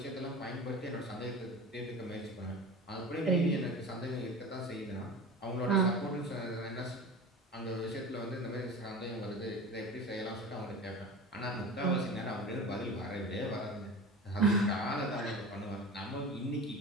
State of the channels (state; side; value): normal; both; correlation 0.33